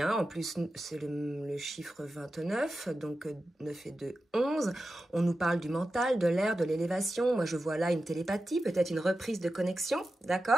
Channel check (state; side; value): normal; both; correlation 0.92